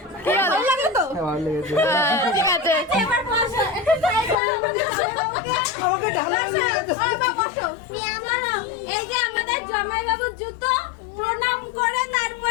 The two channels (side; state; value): right; drops out; at 4.4 s